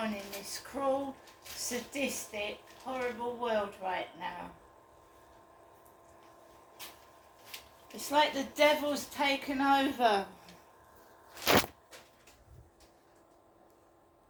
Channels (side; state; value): both; identical; correlation 1.00